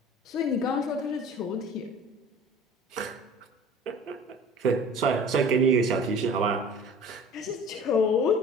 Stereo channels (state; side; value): normal; both; correlation 0.43